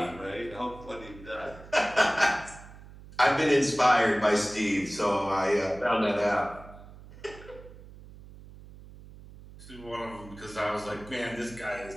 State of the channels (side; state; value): right; noise; hum, 18 dB below the sound